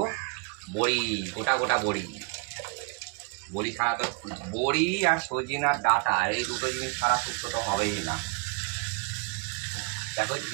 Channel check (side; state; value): left; quieter; 32.5 dB